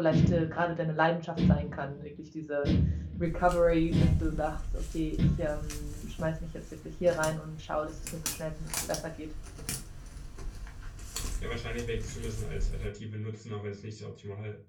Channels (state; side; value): identical; both; correlation 1.00